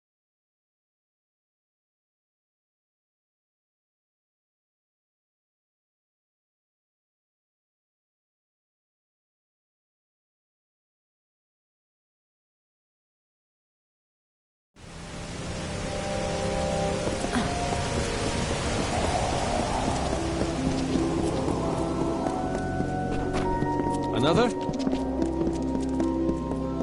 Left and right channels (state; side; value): identical; both; correlation 1.00